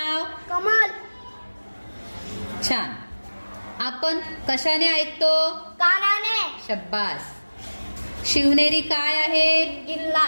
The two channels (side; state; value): both; inverted; correlation -1.00